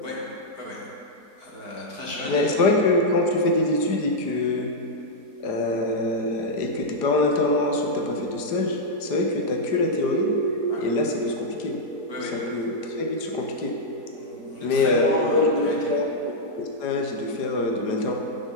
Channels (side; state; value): right; late; 4.5 ms